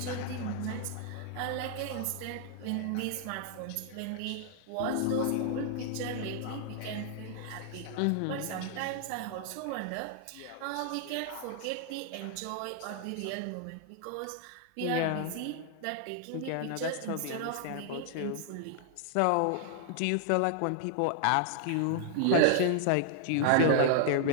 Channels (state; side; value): different; both; correlation -0.01